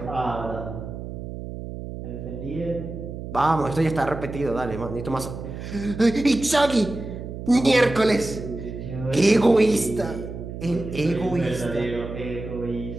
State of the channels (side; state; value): right; noise; hum, 9 dB below the sound